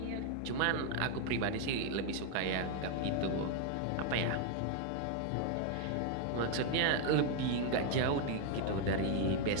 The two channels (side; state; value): both; different; correlation 0.00